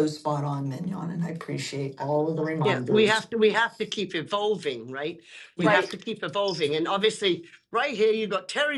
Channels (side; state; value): both; identical; correlation 1.00